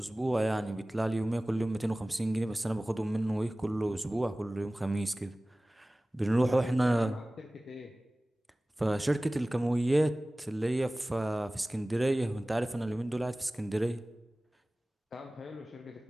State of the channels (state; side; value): normal; both; correlation 0.98